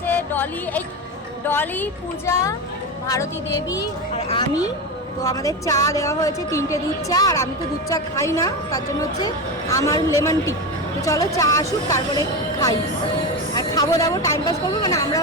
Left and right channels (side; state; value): both; normal; correlation 0.19